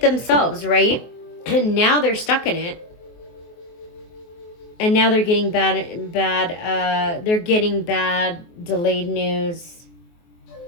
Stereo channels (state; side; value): late; right; 24 ms